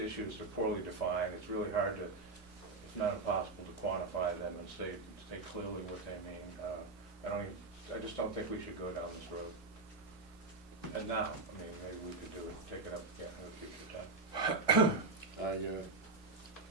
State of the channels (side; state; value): left; quieter; 3.6 dB